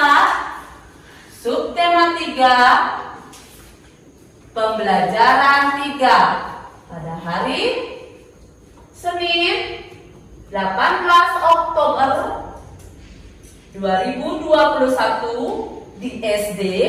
subtema 3, pembelajaran 3 pada hari Senin 18 Oktober 2021 di SD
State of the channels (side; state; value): both; identical; correlation 1.00